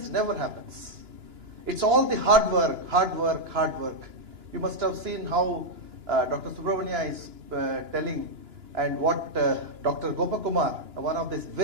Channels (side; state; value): left; late; 2.9 ms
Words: never happens. It's all the hard work, hard work, hard work. You must have seen how Dr. Subramania is telling, and what Dr. Gopakumar, one of this